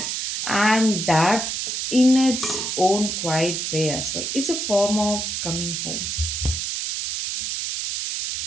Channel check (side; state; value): right; noise; hiss, 2 dB below the sound